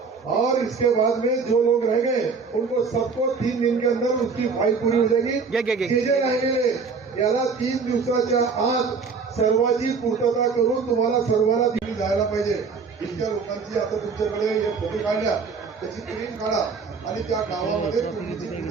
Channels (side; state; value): left; quieter; 5.0 dB